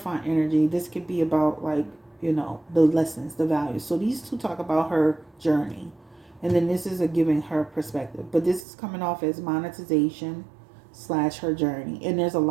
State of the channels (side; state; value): left; drops out; at 8.7 s